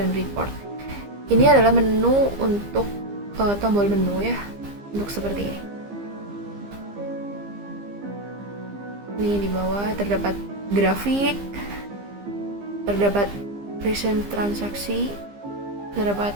report. Ini adalah menu untuk tombol menu ya, untuk seperti ini. Ini di bawah terdapat grafik, terdapat recent transaksi, terdapat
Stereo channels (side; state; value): left; late; 15 ms